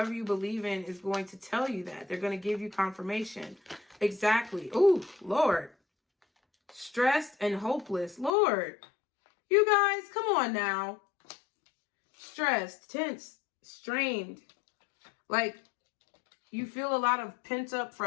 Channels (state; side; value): drops out; right; at 8.3 s